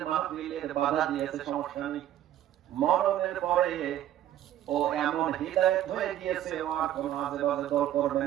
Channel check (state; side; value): quieter; left; 12.2 dB